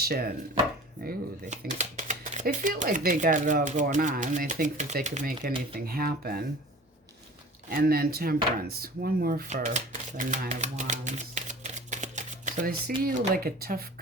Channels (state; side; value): normal; both; correlation 0.42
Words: Ooh, they feel like they got it all going on. They think that they could make anything happen. And then Temperance. One more for the Nine of Wands. So they see you like a tough